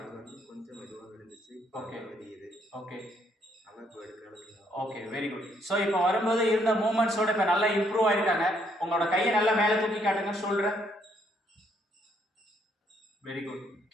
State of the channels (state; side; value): normal; both; correlation 0.70